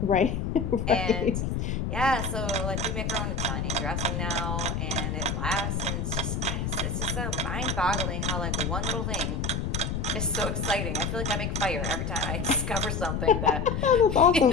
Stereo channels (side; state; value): left; noise; rumble, 1 dB below the sound